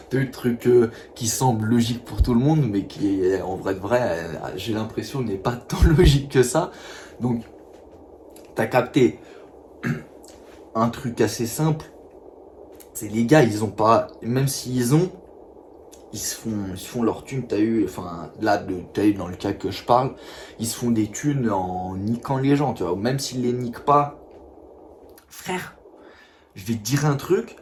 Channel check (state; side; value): identical; both; correlation 1.00